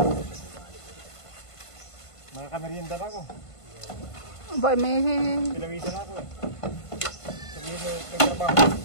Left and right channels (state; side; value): late; right; 1.5 ms